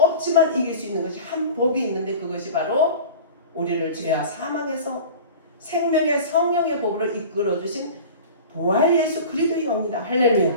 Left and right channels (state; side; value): inverted; both; correlation -0.37